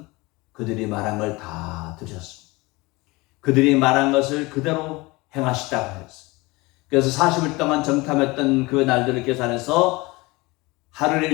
그들이 말한 걸 다 들으셨습니다. 그들이 말한 것을 그대로 행하시다고 했어요. 그래서 40일 동안 정탐했던 그 날들을 계산해서 하루를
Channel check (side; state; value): right; quieter; 23.2 dB